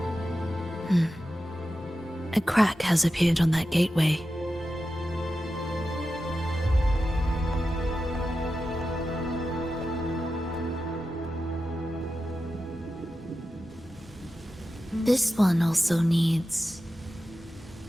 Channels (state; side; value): normal; both; correlation 0.91